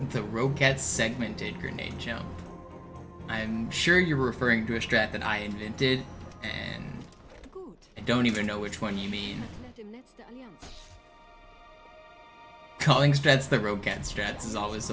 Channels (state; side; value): identical; both; correlation 1.00